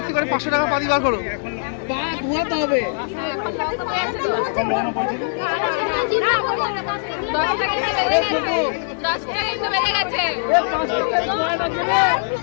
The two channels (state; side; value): silent; right; digital silence